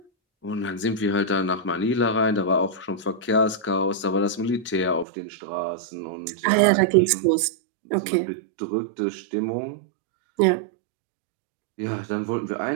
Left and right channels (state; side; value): drops out; left; at 5.1 s